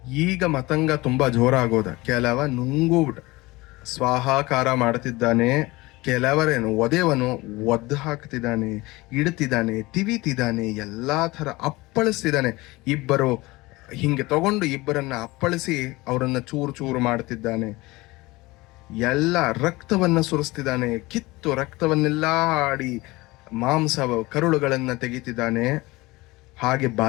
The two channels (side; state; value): right; quieter; 21.4 dB